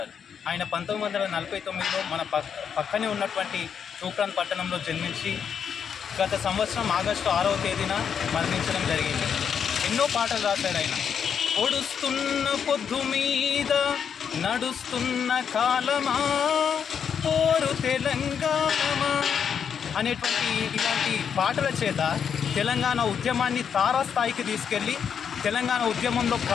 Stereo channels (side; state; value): right; quieter; 7.4 dB